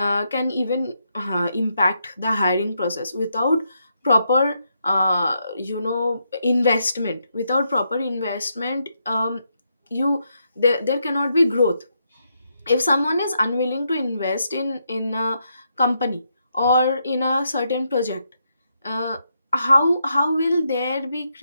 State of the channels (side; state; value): both; inverted; correlation -0.80